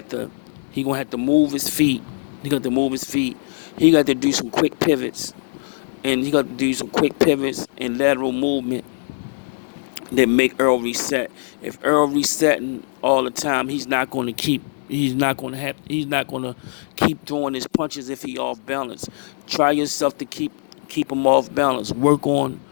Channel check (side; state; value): right; silent; digital silence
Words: to move his feet. He got to move his feet. He got to do some quick pivots, and lateral movement that make Earl reset. If Earl resetting all the time, he's not going to keep throwing his punches if he off balance. Try yourself to keep him off balance. Work on